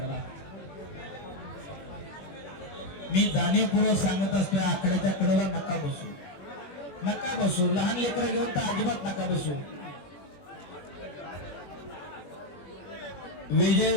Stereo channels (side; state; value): right; late; 21 ms